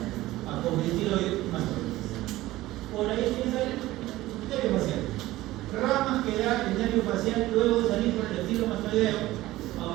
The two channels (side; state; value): left; quieter; 17.0 dB